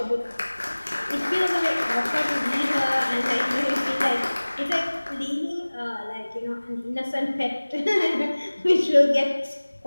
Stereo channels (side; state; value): both; inverted; correlation -1.00